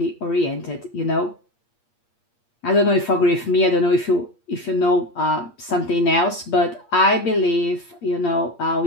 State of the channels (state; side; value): late; right; 8.5 ms